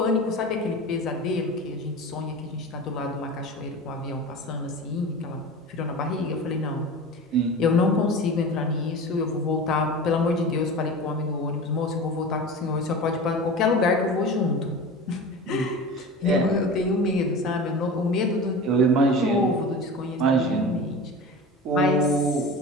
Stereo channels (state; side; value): normal; both; correlation 0.32